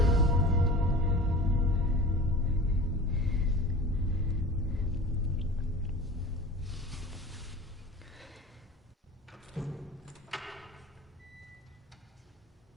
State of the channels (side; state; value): both; normal; correlation 0.37